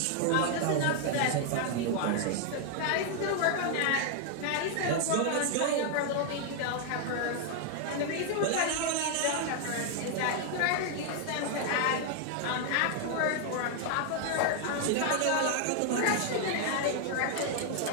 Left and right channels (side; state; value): both; different; correlation 0.00